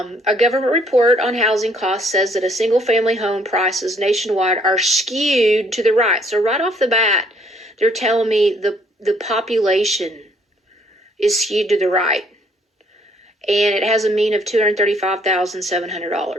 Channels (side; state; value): both; normal; correlation 0.64